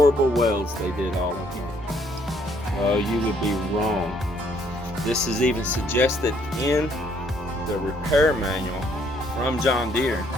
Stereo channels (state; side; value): normal; both; correlation 0.67